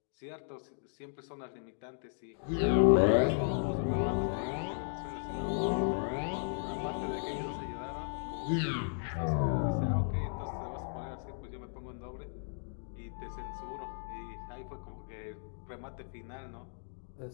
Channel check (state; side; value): silent; right; digital silence